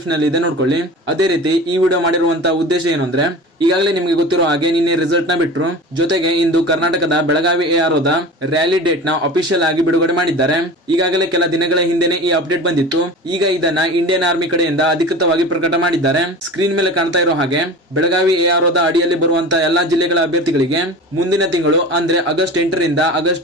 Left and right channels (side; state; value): both; normal; correlation 0.34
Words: ಅಲ್ಲಿ ಇದೆ, ನೋಡ್ಕೊಳ್ಳಿ. ಅದೇ ರೀತಿ ಈ ವಿಡಿಯೋ ಮಾಡಿರುವಂತಹ ಉದ್ದೇಶ ಏನು ಅಂದ್ರೆ, ಈಗಾಗಲೇ ನಿಮಗೆ ಗೊತ್ತಿರೋ ಹಾಗೆ ನಿನ್ನೆ ರಿಸಲ್ಟ್ ನ ಬಿಟ್ರು. ಜೊತೆಗೆ ಇಂದು ಕರ್ನಾಟಕದ ಬೆಳಗಾವಿ AROದ ರ್ಯಾಲಿ ಡೇಟ್ ನ ಅಫಿಷಿಯಲ್ ಆಗಿ ಬಿಡುಗಡೆ ಮಾಡಿದ್ದಾರೆ. ಈಗಾಗಲೇ ಕೆಲ ದಿನಗಳ ಹಿಂದೆನೆ ಈ ಅಪ್ಡೇಟ್ ಬಂದಿತ್ತು. ಈಗ ಇದನ್ನ ಇಂಡಿಯನ್ ಆರ್ಮಿ ಕಡೆಯಿಂದ ಅಧಿಕೃತವಾಗಿ ಪ್ರಕಟ ಮಾಡಿದ್ದಾರೆ. ಸ್ಕ್ರೀನ್ ಮೇಲೆ ಕಾಣ್ತಾ ಇರೋ ಹಾಗೆ ಬೆಳಗಾವಿ AROದ ಅಡಿಯಲ್ಲಿ ಬರುವಂತಹ ಎಲ್ಲಾ ಜಿಲ್ಲೆಗಳ ಅಭ್ಯರ್ಥಿಗಳಿಗೆ ಮುಂದಿನ ತಿಂಗಳು ಅಂದ್ರೆ ಆಗಸ್ಟ್ 8 ರಿಂದ